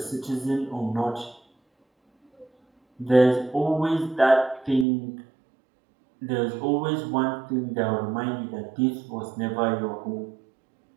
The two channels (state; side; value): drops out; left; at 4.9 s